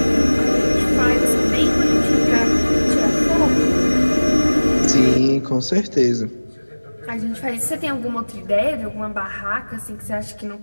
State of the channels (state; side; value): inverted; both; correlation -1.00